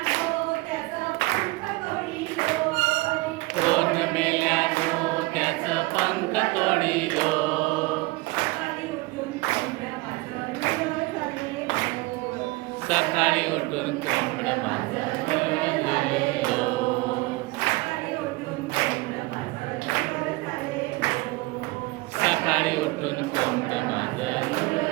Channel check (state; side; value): quieter; left; 22.8 dB